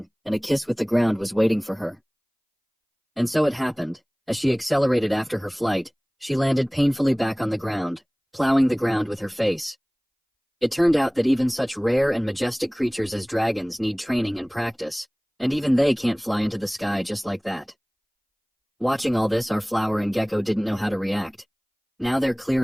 and a kiss with the ground was waiting for her. And so it happened. As she accelerated after her flight, she landed painfully back on the ground, plowing the ground with her face. It turned out that even such rare and majestic creatures as dragons need training and practice, and even they can't fly into the sky just like that. Watching all this, our flower and gecko didn't know how to react. Now their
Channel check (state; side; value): identical; both; correlation 1.00